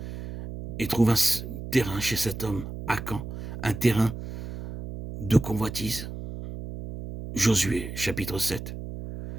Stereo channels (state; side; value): noise; right; hum, 9 dB below the sound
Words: et trouve un terrain chez cet homme, Akan, un terrain de convoitise. Josué, chapitre 7.